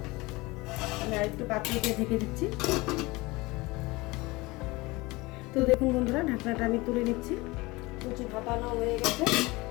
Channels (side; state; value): right; quieter; 22.5 dB